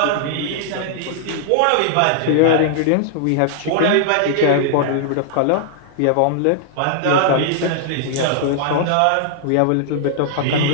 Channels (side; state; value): both; different; correlation -0.01